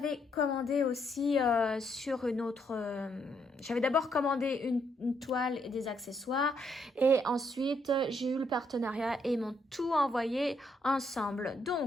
commandé aussi sur une autre... j'avais d'abord commandé une toile et des accessoires, et ensuite, j'ai eu le partenariat et ils m'ont tout envoyé ensemble.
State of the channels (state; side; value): normal; both; correlation 0.74